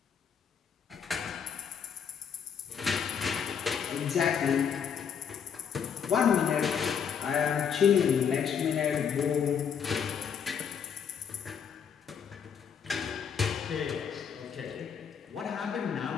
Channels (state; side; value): quieter; right; 7.4 dB